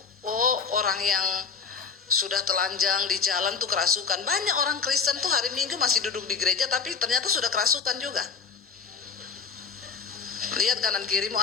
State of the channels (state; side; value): quieter; right; 5.7 dB